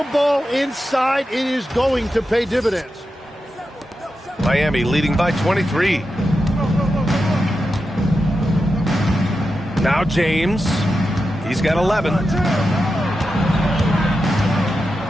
ball inside, it is going to pay dividends. Miami leading by 23. Now James. He's got 11.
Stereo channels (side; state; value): both; normal; correlation 0.89